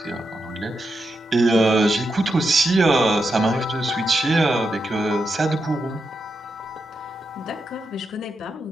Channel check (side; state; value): both; normal; correlation 0.86